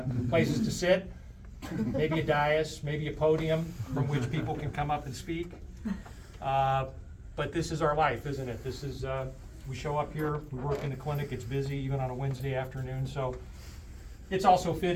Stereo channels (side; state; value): both; identical; correlation 1.00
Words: places to sit, maybe a dais, maybe a podium from which people can come up and speak. But this is our life, isn't it? This is, we show up here, we work in the clinic, it's busy even on a Wednesday afternoon, so it's also